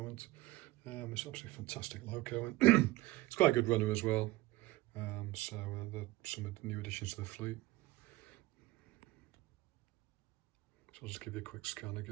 It's absolutely fantastic loco, and it's quite a good runner as well. So some of the new additions to the fleet. So I'll just give you a quick scan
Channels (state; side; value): quieter; left; 18.4 dB